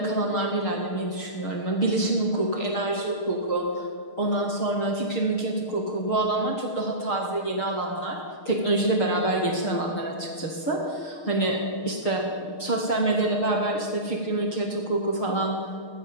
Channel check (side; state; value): right; late; 6.5 ms